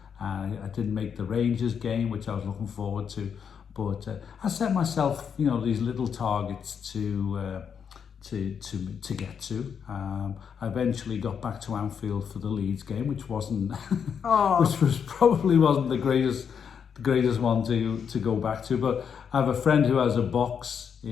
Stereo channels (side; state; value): right; quieter; 7.2 dB